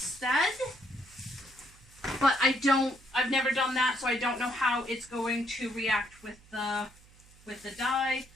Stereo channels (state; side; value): noise; right; hum, 25 dB below the sound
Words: but I've never done that, so I don't know how it's going to react with the dye.